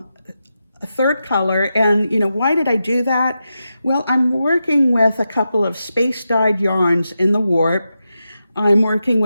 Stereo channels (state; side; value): inverted; both; correlation -0.89